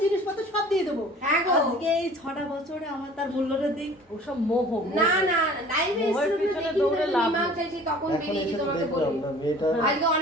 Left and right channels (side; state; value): both; normal; correlation 0.47